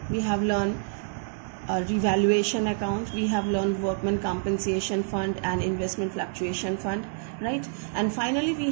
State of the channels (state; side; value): silent; left; 60 dB below the other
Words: We have learned revaluation account. We have learned workman compensation fund and investment fluctuation fund, right? And finally we